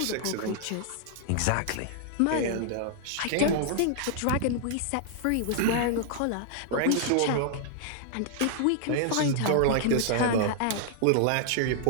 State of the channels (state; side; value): different; both; correlation -0.01